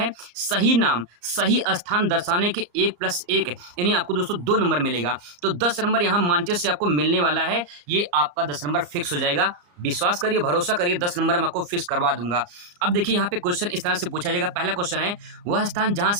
सही नाम सही स्थान दर्शाने के 1+1 यानी आपको दोस्तों 2 नंबर मिलेगा। तो 10 नंबर यहाँ मानचित्र से आपको मिलने वाला है, ये आपका 10 नंबर फिक्स हो जाएगा। विश्वास करिए, भरोसा करिए, 10 नंबर मैं आपको फिक्स करवा दूंगा। अब देखिए यहाँ पे क्वेश्चन इस तरह से पूछा जाएगा। पहला क्वेश्चन है, वह स्थान जहाँ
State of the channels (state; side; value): late; left; 34 ms